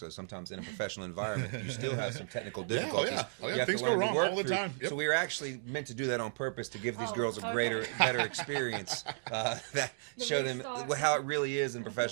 sometimes in a professional environment, you still have some technical difficulties. yeah. You have Things to go learn to wrong work all the through. time. Yep. So we were actually meant to do that on purpose to give these Oh, girls a okay. better experience. That The show restart. them how it really is in Okay.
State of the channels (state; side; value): silent; left; digital silence